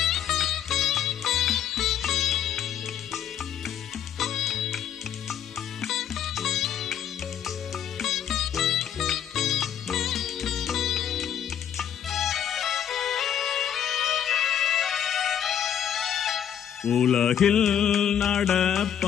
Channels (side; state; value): right; quieter; 9.5 dB